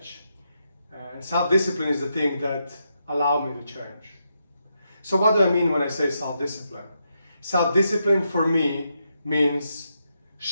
And self-discipline is the thing that allowed me to change. So what do I mean when I say self-discipline? Self-discipline for me means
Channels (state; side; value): inverted; both; correlation -0.82